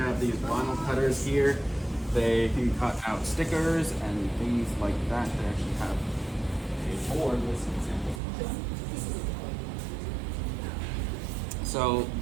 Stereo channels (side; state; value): left; drops out; at 8.2 s